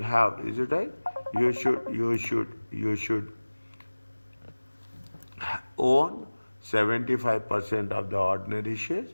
have. Is it right? You should own 75% of the ordinary shares.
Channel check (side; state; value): both; inverted; correlation -1.00